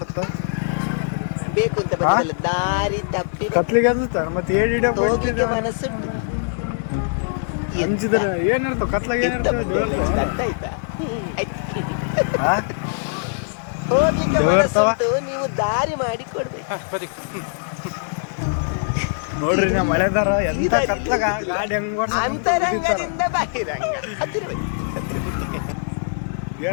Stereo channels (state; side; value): silent; right; 64 dB below the other